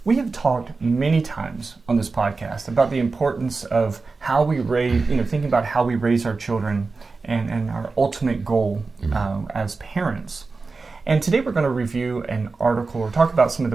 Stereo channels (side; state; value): left; quieter; 4.1 dB